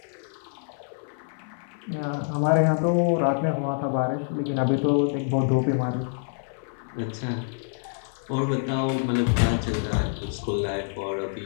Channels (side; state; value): right; silent; 57 dB below the other